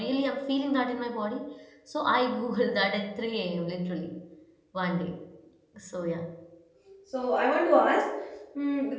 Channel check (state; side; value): identical; both; correlation 1.00